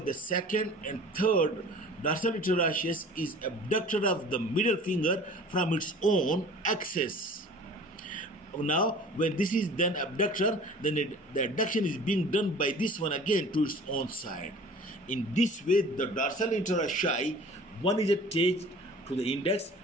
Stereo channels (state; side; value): normal; both; correlation 0.45